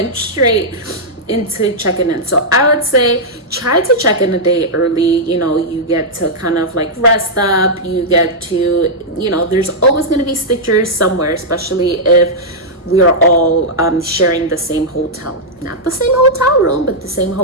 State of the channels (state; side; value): normal; both; correlation -0.07